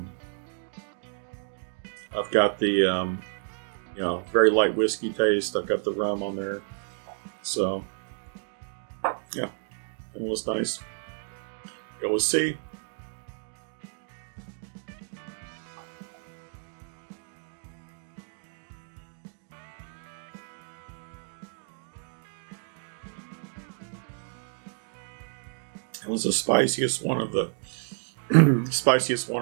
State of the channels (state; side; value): silent; left; 58 dB below the other